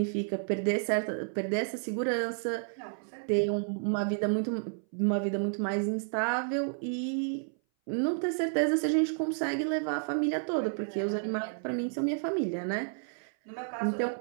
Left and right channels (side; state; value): left; silent; 57 dB below the other